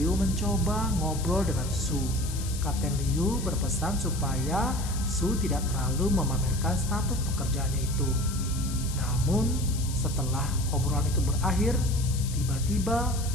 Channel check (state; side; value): noise; left; hiss, 11 dB below the sound